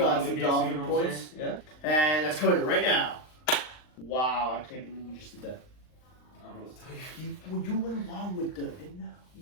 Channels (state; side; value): late; right; 39 ms